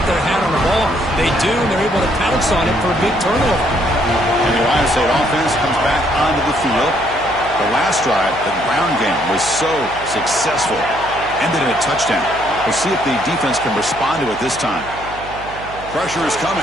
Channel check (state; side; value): noise; right; hum, 16 dB below the sound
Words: their hand on the ball? They do, and they're able to pounce on it for a big turnover. And the Ohio State offense comes back onto the field. The last drive, the ground game, was so successful. Ended in a touchdown. We'll see if the defense can respond to it this time. Pressure is